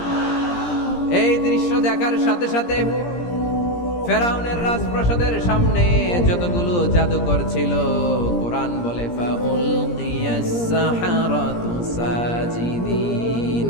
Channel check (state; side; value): late; right; 17 ms